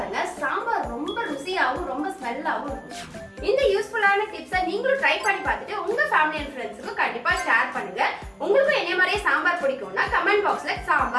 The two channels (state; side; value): identical; both; correlation 1.00